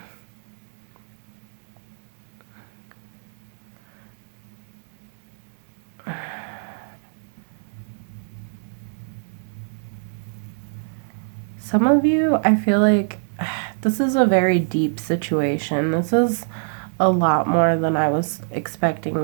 Some of you, I feel like this is a very deep situation. This is a lot more than I was expecting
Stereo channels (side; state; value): left; silent; digital silence